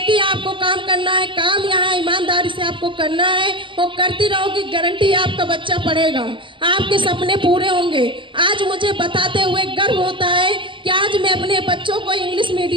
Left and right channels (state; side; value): late; left; 0.24 ms